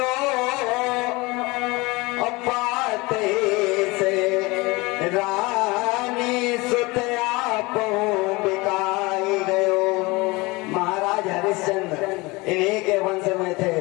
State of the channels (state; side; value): quieter; right; 23.7 dB